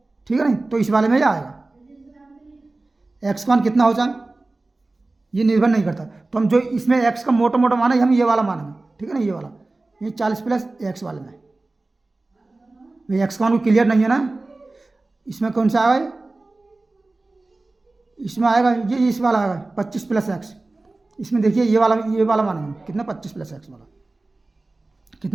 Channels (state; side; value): quieter; left; 3.1 dB